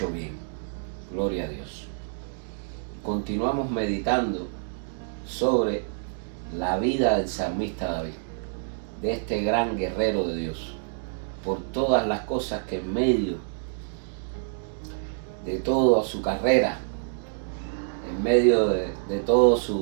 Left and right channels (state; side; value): silent; left; digital silence